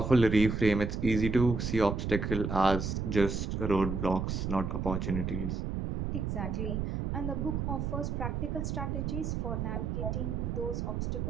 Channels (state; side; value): noise; right; rumble, 2 dB below the sound